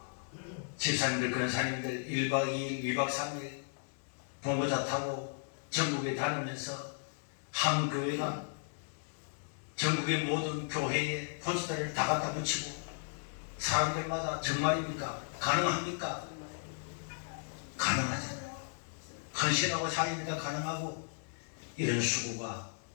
집사님들, 권사님들 1박 2일, 2박 3일 봉고차 타고 전국에 다니면서 한 교회가 전국의 모든 교회에 포스터를 다 갖다 붙이고 사람들마다 정말입니까? 가능합니까? 가능하잖아요. 헌신하고 자기니까 가능하고 이런 수고가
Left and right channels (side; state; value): right; silent; digital silence